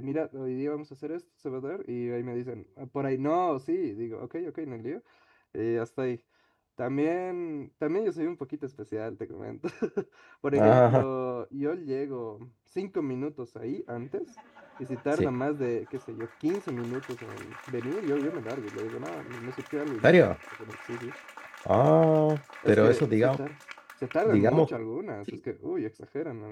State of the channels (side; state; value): both; identical; correlation 1.00